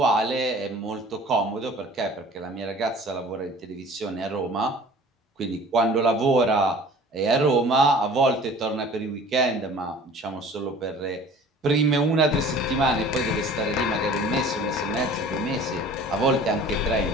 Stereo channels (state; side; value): normal; both; correlation 0.46